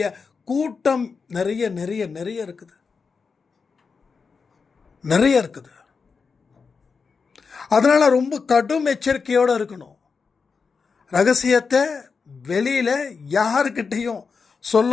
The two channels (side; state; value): right; quieter; 5.2 dB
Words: கூட்டம் நிறைய நிறைய நிறைய இருக்குது, நிறைய இருக்குது. அதனால் ரொம்ப கடும் எச்சரிக்கையோடு இருக்கணும். ரகசியத்தை வெளியில் யாருக்கிட்டையும்